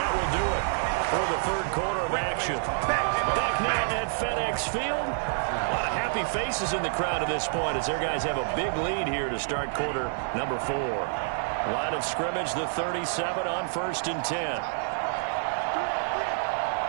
will do it for the third quarter of action. Back now at FedEx Field. A lot of happy faces in the crowd at this point as their guys have a big lead here to start quarter number 4. Line of scrimmage, the 37 on 1st and 10.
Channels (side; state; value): left; silent; 59 dB below the other